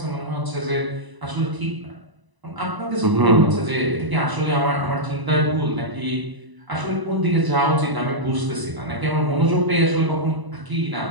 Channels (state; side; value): late; left; 1.0 ms